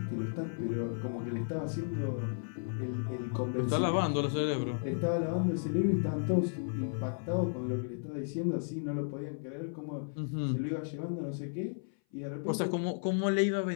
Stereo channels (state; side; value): silent; right; 55 dB below the other